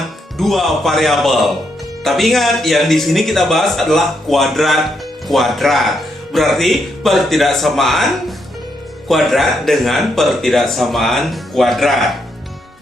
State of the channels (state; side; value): normal; both; correlation 0.78